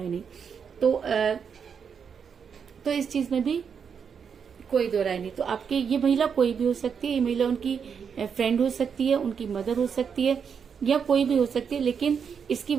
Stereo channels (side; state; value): left; quieter; 6.8 dB